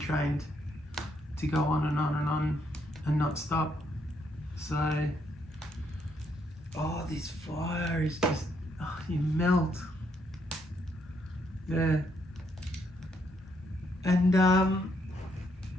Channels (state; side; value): normal; both; correlation 0.74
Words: to go on and on and on and not stop. So, this fire is just, you melt. Yeah. And